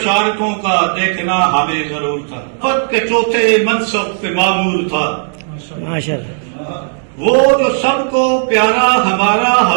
کا دیکھنا ہمیں ضرور تھا۔ خط کے چوتھے منصب سے معمور تھا، ماشاء اللہ۔ وہ جو سب کو پیارا ہمارا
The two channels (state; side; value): silent; left; digital silence